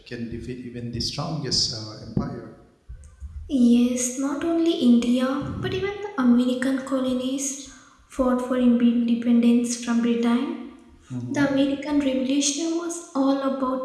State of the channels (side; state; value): both; identical; correlation 1.00